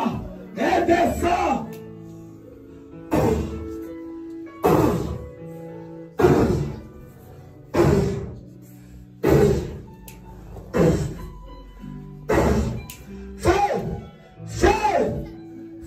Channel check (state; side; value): identical; both; correlation 1.00